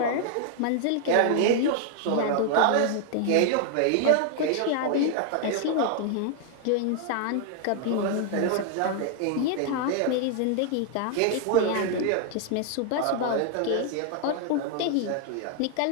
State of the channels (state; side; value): different; both; correlation 0.00